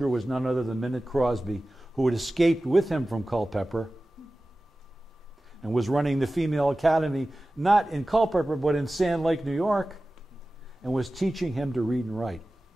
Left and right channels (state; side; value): normal; both; correlation 0.96